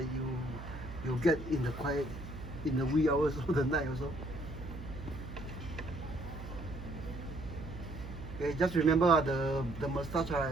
you get in the quiet, in the wee hours of the night also. Okay, just remember the mustache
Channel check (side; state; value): right; noise; hum, 11 dB below the sound